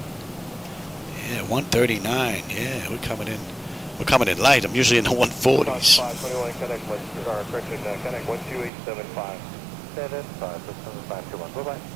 Yeah, 139. Yeah, we're coming in. We're coming in light. I'm usually in the 140s. 521, connect 12875. 7521. Bye-bye.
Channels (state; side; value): drops out; left; at 8.7 s